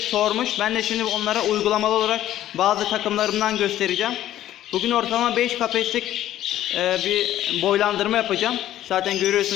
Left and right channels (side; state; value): right; quieter; 12.8 dB